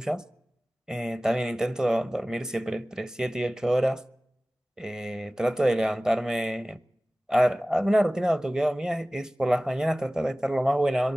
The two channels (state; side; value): normal; both; correlation 0.97